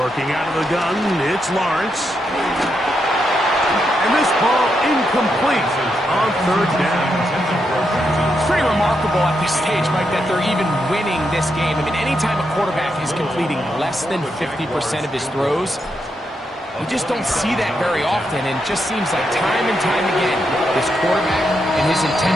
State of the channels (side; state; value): both; normal; correlation 0.82